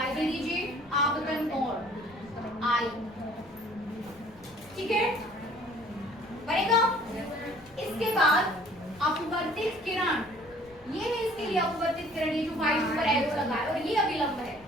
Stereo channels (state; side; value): noise; left; rumble, 26 dB below the sound